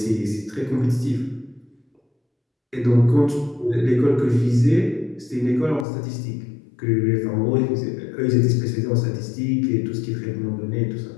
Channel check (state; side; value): drops out; right; at 5.9 s